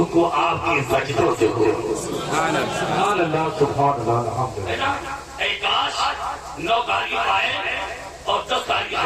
کو آپ کے سجدوں سے ہو۔ سبحان اللہ، سبحان اللہ، الحمدللہ۔ اے کاش 9 تاریخ آئے اور 10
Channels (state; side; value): identical; both; correlation 1.00